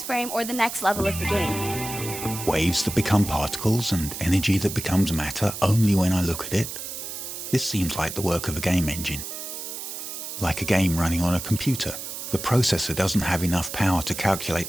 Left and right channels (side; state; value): right; noise; hiss, 8 dB below the sound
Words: frame or the next level of the game. Waves that become particles and energy that becomes matter only when I look at it. This seems like the work of a game engine. Like a game running on a computer, the processor doesn't have enough power to calculate